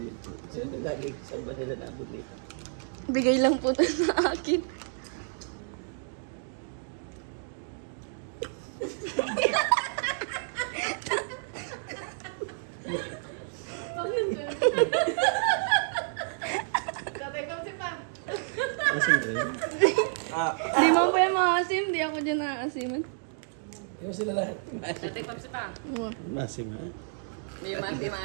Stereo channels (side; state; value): left; silent; digital silence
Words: Bigay lang po ito sa akin. Di mo pa yung maasim, di ako dyan naasiman. Yung sila lahat. Tatay Papsi pa. Masim ha? Di